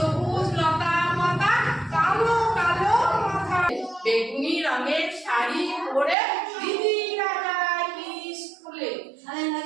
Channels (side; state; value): left; drops out; at 6.2 s